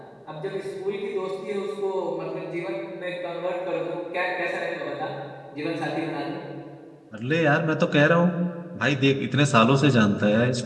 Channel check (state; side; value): identical; both; correlation 1.00